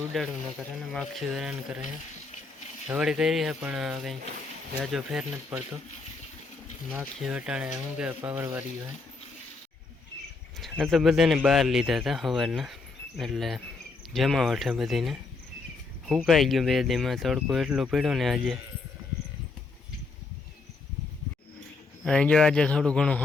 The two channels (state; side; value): quieter; right; 4.0 dB